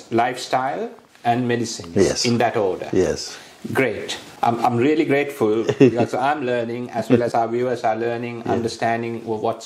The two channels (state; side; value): identical; both; correlation 1.00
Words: lifestyle, and medicines, in that order. Yes. Great. I'm really grateful because I'm learning, as well as our viewers are learning, understanding what's